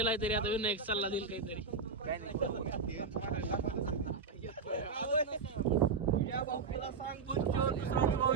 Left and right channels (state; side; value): quieter; left; 4.9 dB